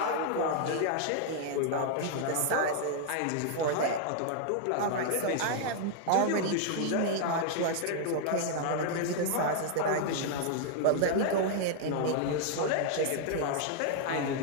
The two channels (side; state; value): both; different; correlation 0.00